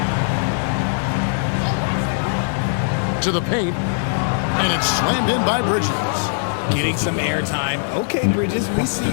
To the paint. And it's slammed in by Bridges. Getting some airtime. Okay, Bridges, we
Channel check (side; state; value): right; silent; 58 dB below the other